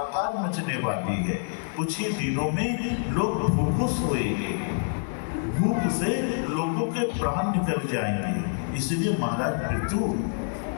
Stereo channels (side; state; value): right; silent; digital silence